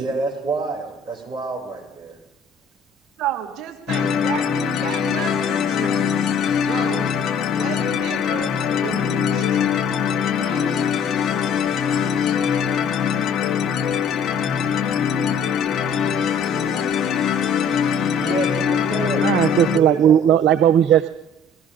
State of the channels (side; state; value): both; normal; correlation 0.52